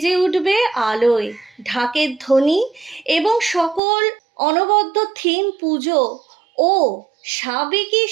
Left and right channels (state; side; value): drops out; left; at 3.8 s